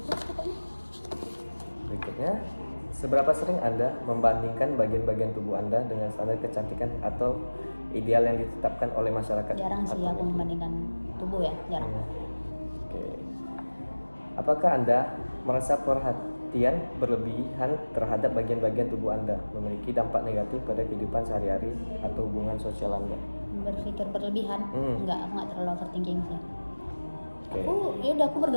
pokoknya. Berikutnya, seberapa sering Anda membandingkan bagian-bagian tubuh Anda dengan standar kecantikan atau ideal yang ditetapkan oleh masyarakat? Jarang sih atau aku membandingkan tubuh ya, jarang. Oke. Apakah Anda merasa perhatian berlebihan terhadap bagian-bagian tubuh Anda memiliki dampak negatif pada kehidupan sehari-hari atau hubungan sosial Anda? Berpikir berlebihan? Enggak, aku nggak terlalu overthinking sih. Oke. Aku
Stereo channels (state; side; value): inverted; both; correlation -1.00